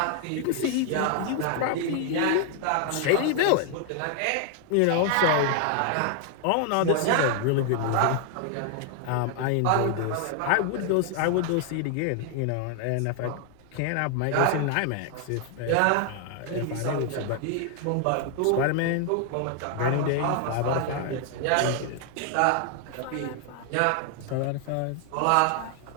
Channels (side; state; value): both; different; correlation 0.00